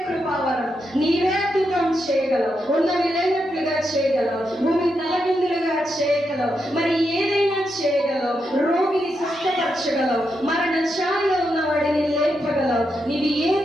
కృపావరం, నీవే అద్భుతం చేయగలవు, ఉన్నవి లేనట్లుగా చేయగలవు, భూమి తలకిందులుగా చేయగలవు, మరి ఏదైనా చేయగలవు, రోగిని స్వస్థపరచగలవు, మరణ ఛాయలో ఉన్న వాడిని లేపగలవు, నీవు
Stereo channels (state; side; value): normal; both; correlation 0.84